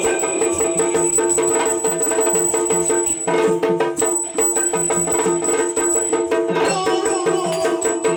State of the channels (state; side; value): identical; both; correlation 1.00